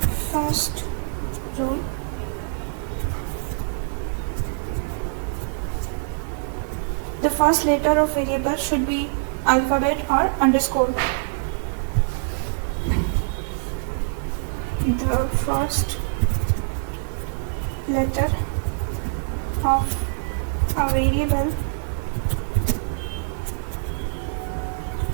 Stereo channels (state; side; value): silent; left; digital silence